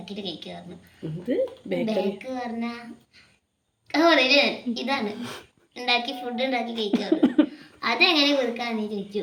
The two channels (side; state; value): both; identical; correlation 1.00